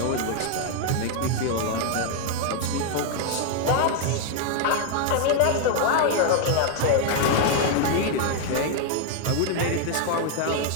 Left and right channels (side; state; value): both; different; correlation 0.00